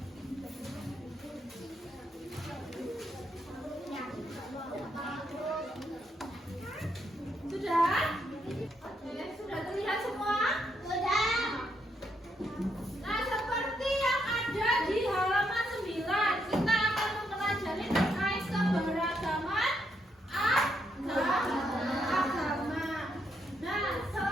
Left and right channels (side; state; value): both; normal; correlation 0.77